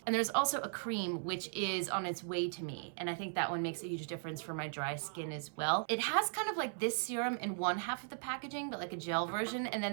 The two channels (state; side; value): silent; left; 53 dB below the other